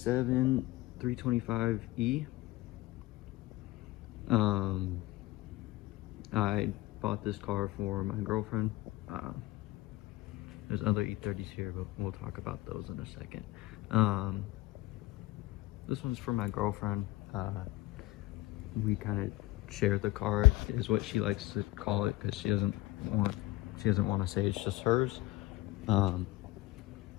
325E. I bought this car for my girlfriend. There's other E30s here, but we'll talk about those in a second. This one's for my girlfriend. We kind of share the car, is what she likes to call it, because she doesn't want to say it's just hers.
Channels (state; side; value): quieter; right; 18.3 dB